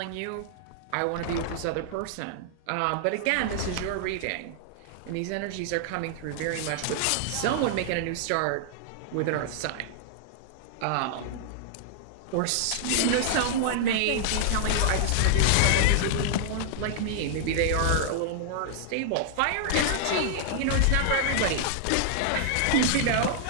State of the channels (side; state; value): both; different; correlation -0.01